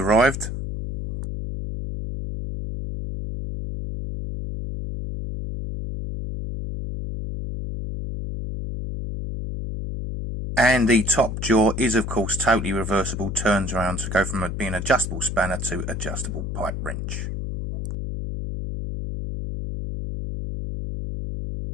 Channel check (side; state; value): left; noise; hum, 4 dB below the sound